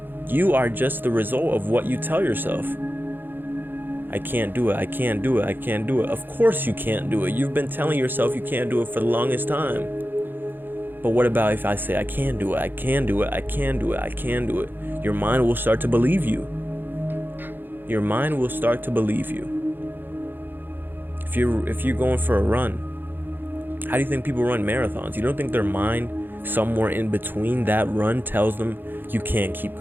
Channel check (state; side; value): late; left; 0.095 ms